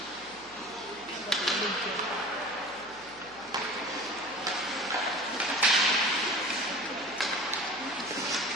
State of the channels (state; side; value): noise; right; hum, 25 dB below the sound